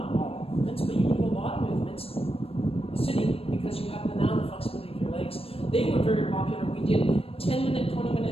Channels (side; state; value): right; late; 0.28 ms